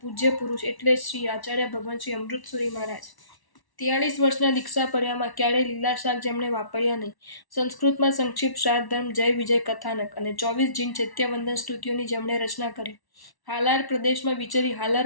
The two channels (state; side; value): late; right; 1.1 ms